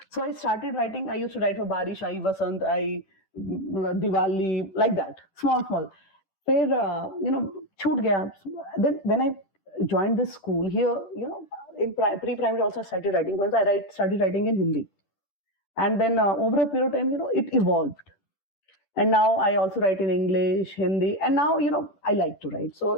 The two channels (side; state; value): right; late; 10 ms